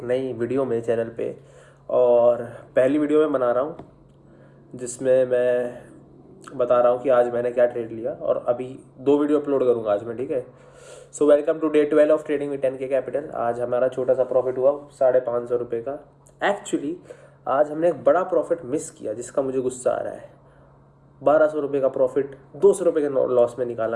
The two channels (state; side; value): identical; both; correlation 1.00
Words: नई वीडियो में चैनल पे। और पहली वीडियो में बना रहा हूँ जिसमें मैं बता रहा हूँ कि आज मैंने क्या ट्रेड लिया, और अभी 2 वीडियो अपलोड करूँगा आज मैं, ठीक है। So welcome to day 12 of trading with 10K capital. आज हमारा छोटा सा प्रॉफिट हुआ 550 रुपये का। एक्चुअली आज हमने एक बड़ा प्रॉफिट मिस किया जिसका मुझे गुस्सा आ रहा है। 1200 रुपये का प्रॉफिट 200 रुपये के लॉस में